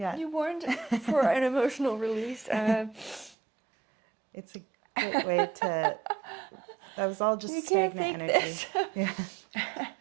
you warned for an emotional release. It's a great way to, that was all just You can't stagnant fake energy. this. Yeah.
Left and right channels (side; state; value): left; drops out; at 3.4 s